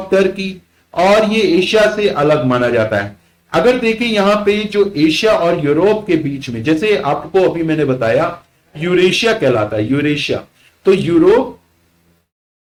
टर्की, और ये एशिया से अलग माना जाता है। अगर देखें यहां पे जो एशिया और यूरोप के बीच में, जैसे आपको अभी मैंने बताया यूरेशिया कहलाता है, यूरेशिया। तो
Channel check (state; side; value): identical; both; correlation 1.00